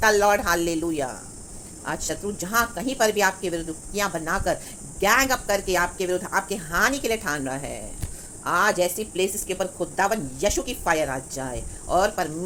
द लॉर्ड, हालेलुया। आज शत्रु जहां कहीं पर भी आपके विरुद्ध युक्तियां बनाकर, गैंग अप करके आपके विरुद्ध, आपके हानि के लिए ठान रहा है, आज ऐसी प्लेसेस के ऊपर खुदावन यीशु की फायर आ जाए और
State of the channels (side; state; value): both; identical; correlation 1.00